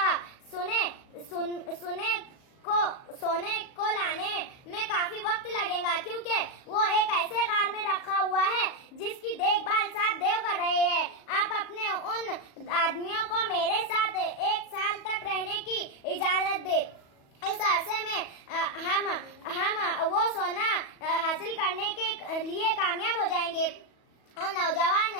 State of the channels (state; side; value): late; right; 37 ms